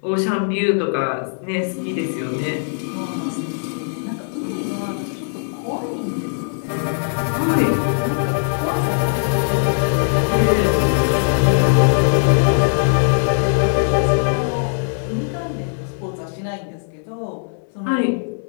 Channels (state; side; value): silent; right; 66 dB below the other